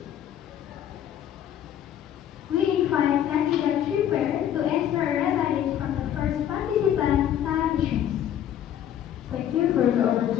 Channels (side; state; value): right; quieter; 10.5 dB